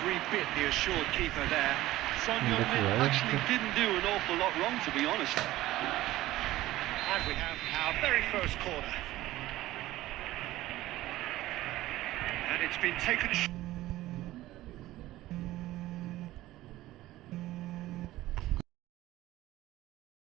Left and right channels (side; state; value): left; quieter; 16.1 dB